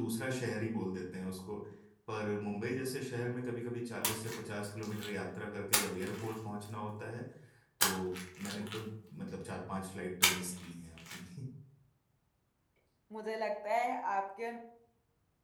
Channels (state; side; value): identical; both; correlation 1.00